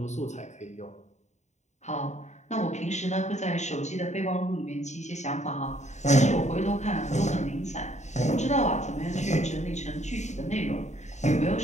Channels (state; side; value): late; right; 0.34 ms